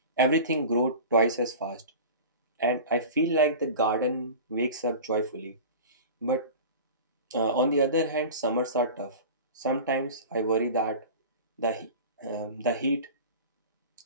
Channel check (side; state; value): both; inverted; correlation -0.35